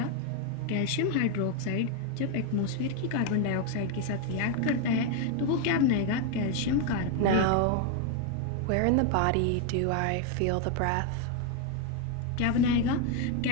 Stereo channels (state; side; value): different; both; correlation 0.01